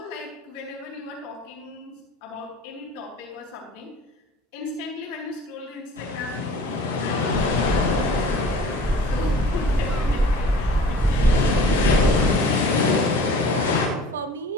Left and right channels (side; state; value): both; normal; correlation 0.45